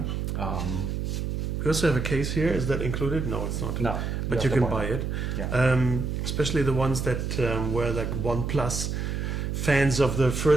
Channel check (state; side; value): noise; right; hum, 2 dB below the sound